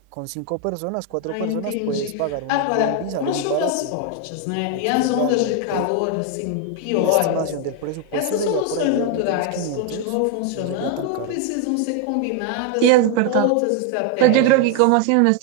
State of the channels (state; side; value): different; both; correlation 0.01